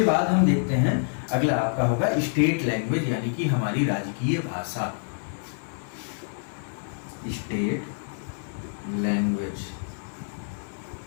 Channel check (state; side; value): silent; right; 60 dB below the other